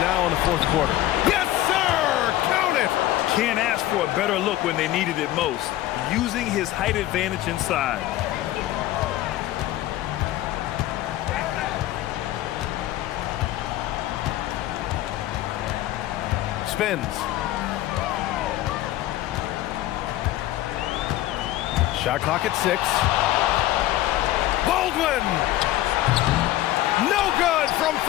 in the fourth quarter. Yes, sir! Count it! Can't ask for a better look when they needed it most, using his height advantage inside. Spins. Shot clock at 6. Baldwin! No good from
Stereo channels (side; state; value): right; quieter; 15.0 dB